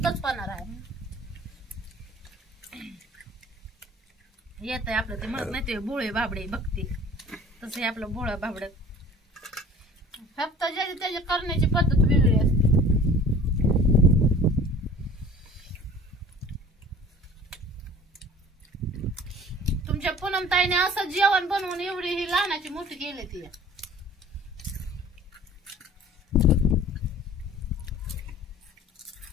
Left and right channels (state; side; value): normal; both; correlation 0.46